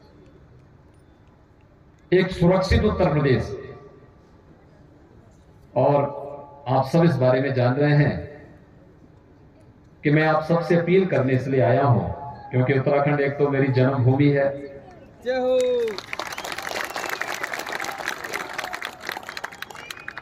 एक सुरक्षित उत्तर प्रदेश। और आप सब इस बारे में जान रहे हैं कि मैं आप सबसे अपील करने इसलिए आया हूं क्योंकि उत्तराखंड एक तो मेरी जन्मभूमि है, जय हो।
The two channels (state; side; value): identical; both; correlation 1.00